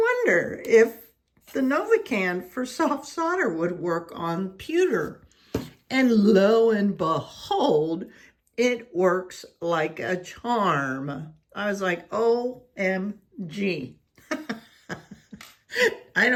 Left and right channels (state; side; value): identical; both; correlation 1.00